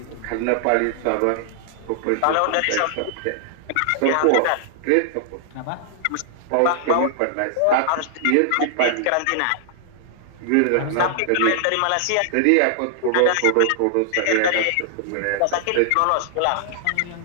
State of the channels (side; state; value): both; different; correlation -0.01